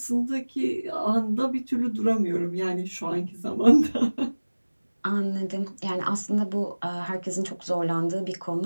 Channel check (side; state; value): both; inverted; correlation -1.00